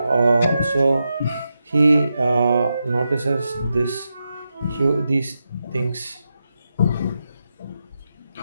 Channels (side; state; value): both; inverted; correlation -0.88